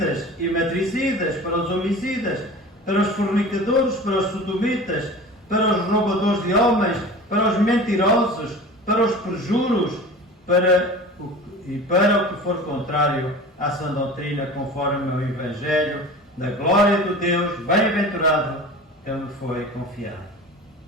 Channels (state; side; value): normal; both; correlation 0.37